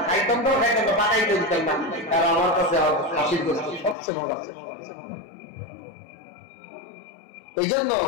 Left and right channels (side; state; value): right; drops out; at 4.0 s